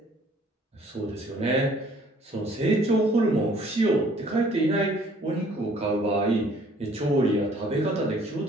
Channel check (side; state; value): both; normal; correlation 0.58